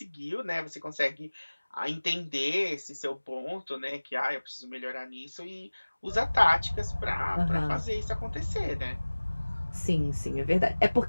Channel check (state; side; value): inverted; both; correlation -1.00